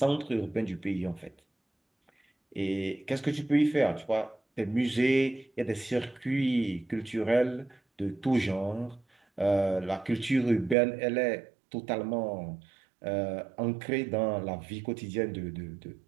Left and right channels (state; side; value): drops out; left; at 10.8 s